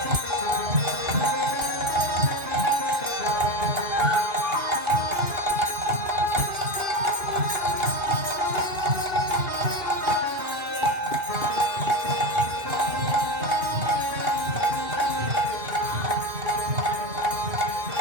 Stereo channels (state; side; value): late; left; 2.5 ms